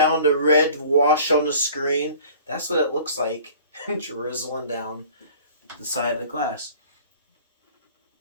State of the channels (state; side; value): inverted; both; correlation -0.48